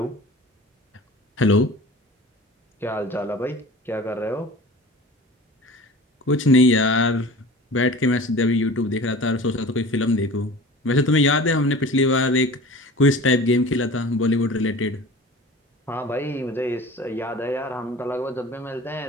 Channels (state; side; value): normal; both; correlation 0.39